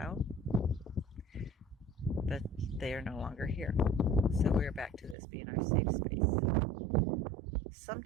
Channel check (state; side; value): drops out; left; at 5.2 s